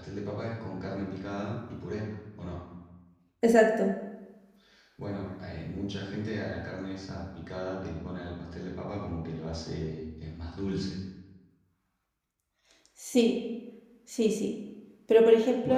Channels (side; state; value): both; identical; correlation 1.00